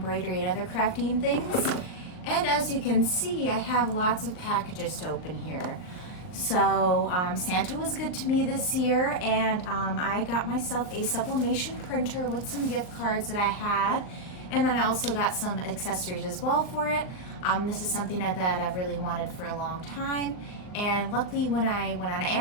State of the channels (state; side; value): late; right; 39 ms